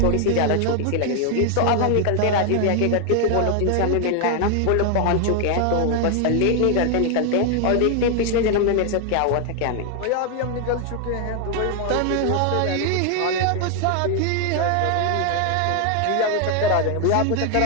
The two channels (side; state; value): both; different; correlation 0.00